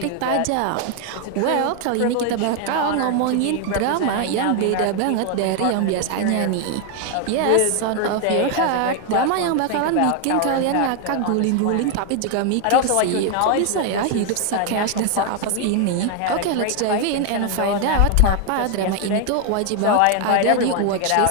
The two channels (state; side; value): different; both; correlation 0.00